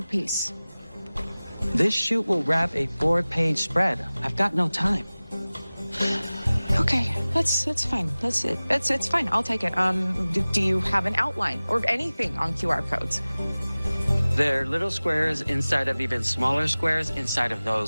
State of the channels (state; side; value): inverted; both; correlation -0.98